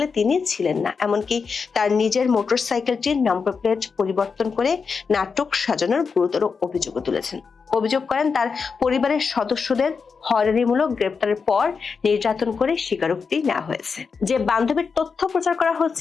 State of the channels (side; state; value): right; quieter; 5.4 dB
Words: তিনি ছিলেন না, এমনকি তার নিজের মোটরসাইকেলটির নম্বর প্লেট পরিবর্তন করে নাটক সাজানোর গুরুতর অভিযোগও তুলেছেন। অভিযোগ করেন তার পরিবারের সদস্যদের হয়রানিমূলক গ্রেপ্তারের পর নির্যাতন করে স্বীকারোক্তি নেওয়া হয়েছে। যে বান্ধবীর তথ্য প্রচার করা